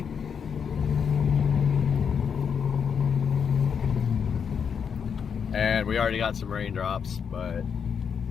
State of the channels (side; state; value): right; quieter; 6.9 dB